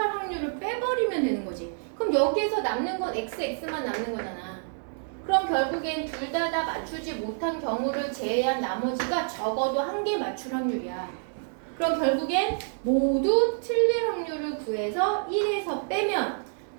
확률을 빼버리면 되는 거지. 그럼 여기에서 남는 건 XX만 남는 거잖아. 그럼 결국엔 둘 다 맞추지 못한 경우를 제외한 나머지가 적어도 한 개 맞출 확률이야. 그럼 결국엔 모두 틀릴 확률을 구해서 1에서 빼면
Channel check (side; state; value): left; silent; digital silence